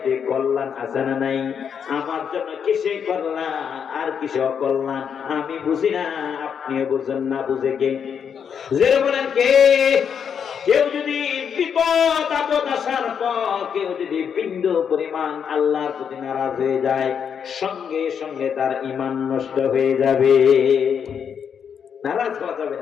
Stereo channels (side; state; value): right; quieter; 7.4 dB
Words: কল্যাণ আছে না নাই? আমার জন্য কিসে কল্যাণ আর কিসে অকল্যাণ আমি বুঝি না, আপনিও বুঝেন না, বুঝে কে? যে বলেন কে? কেউ যদি বিপদ আপদ আসার পর কেউ যদি বিন্দু পরিমাণ আল্লাহর প্রতি নারাজ হয়ে যায়, সঙ্গে সঙ্গে তার ঈমান নষ্ট হয়ে যাবে। নারাজ হওয়া যাবে